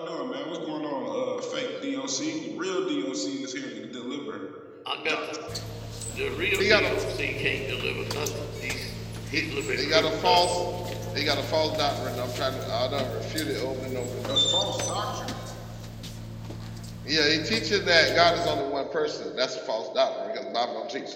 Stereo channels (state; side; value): identical; both; correlation 1.00